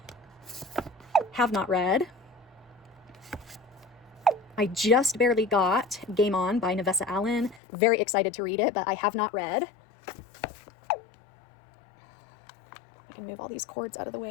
Have not read. I just barely got Game On by Nevessa Allen. Very excited to read it, but I have not read. I can move all these cords out of the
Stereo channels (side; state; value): right; drops out; at 7.6 s